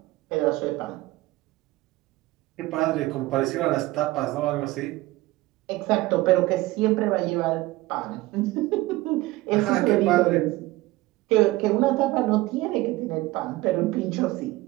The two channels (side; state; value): left; quieter; 18.8 dB